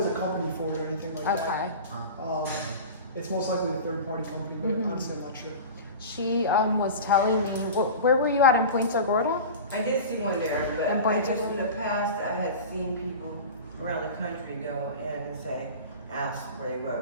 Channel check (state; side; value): inverted; both; correlation -0.32